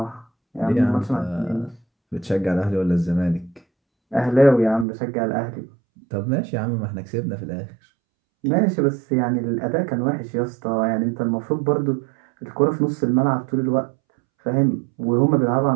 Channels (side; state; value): left; drops out; at 4.9 s